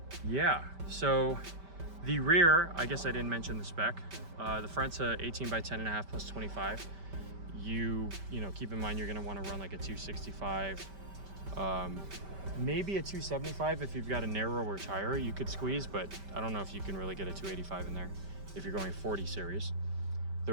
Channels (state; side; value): late; left; 5.1 ms